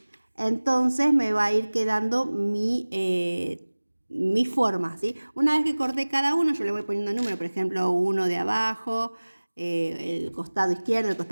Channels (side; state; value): both; inverted; correlation -1.00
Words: Entonces me va a ir quedando mi forma, ¿sí? Una vez que corté cada uno, yo le voy poniendo número, por ejemplo, uno de abajo, el costado izquierdo, el